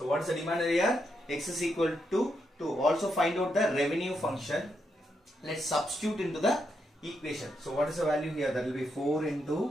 what is the demand here? X is equal to 2. Also find out the revenue function. Let's substitute into the equation. So what is the value here? That will be 4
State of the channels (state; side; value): normal; both; correlation 0.81